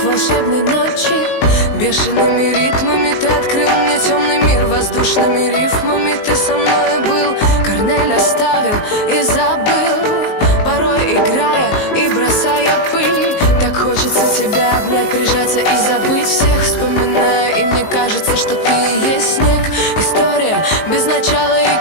волшебной ночи. Бешеными ритмами ты открыл мне темный мир. Воздушными рифмами ты со мной был. Корнель оставил и забыл, порой играя и бросая пыль. Так хочется тебя обнять, прижаться и забыть всех. Вспоминая, и мне кажется, что ты и есть снег. История без начала и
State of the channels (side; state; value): right; late; 19 ms